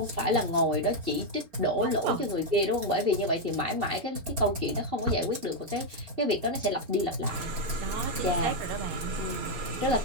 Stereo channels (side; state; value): left; late; 4.4 ms